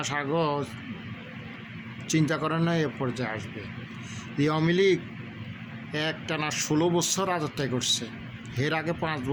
আগে চিন্তা করে না এ পর্যায়ে আসবে। এই আওয়ামী লীগ একটানা 16 বছর রাজত্ব করছে, এর আগে 5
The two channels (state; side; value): identical; both; correlation 1.00